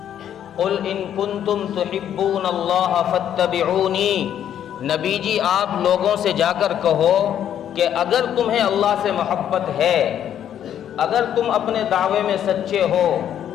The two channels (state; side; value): quieter; right; 10.0 dB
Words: قل ان کنتم تحبون اللہ فاتبعونی، نبی جی آپ لوگوں سے جا کر کہو کہ اگر تمہیں اللہ سے محبت ہے، اگر تم اپنے دعوے میں سچے ہو